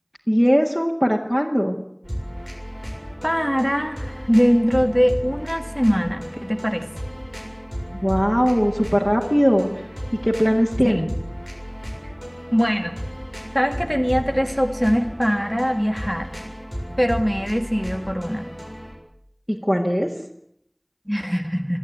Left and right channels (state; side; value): identical; both; correlation 1.00